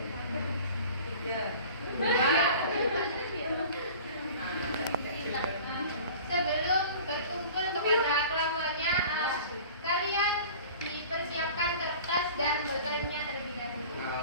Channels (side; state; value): both; inverted; correlation -0.42